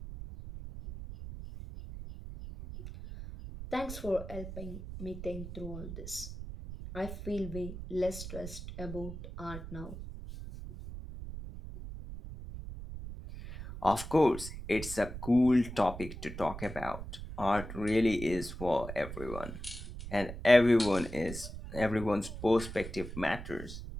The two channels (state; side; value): noise; right; rumble, 10 dB below the sound